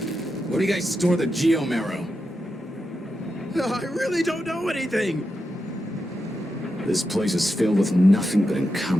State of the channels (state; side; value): normal; both; correlation 0.87